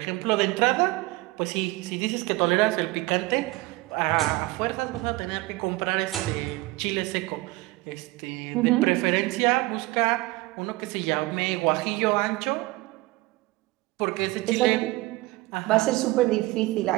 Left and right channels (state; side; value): quieter; left; 20.6 dB